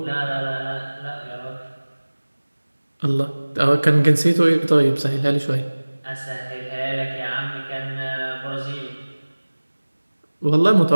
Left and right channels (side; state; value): both; inverted; correlation -1.00